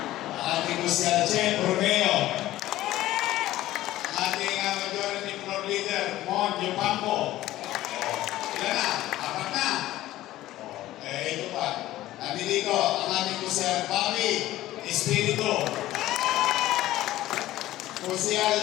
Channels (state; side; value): quieter; right; 15.3 dB